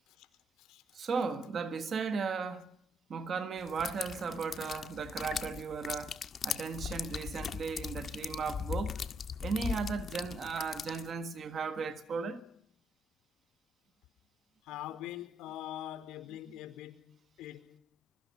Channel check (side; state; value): both; normal; correlation 0.74